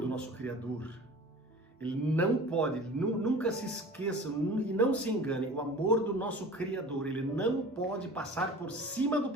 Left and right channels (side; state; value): both; normal; correlation 0.40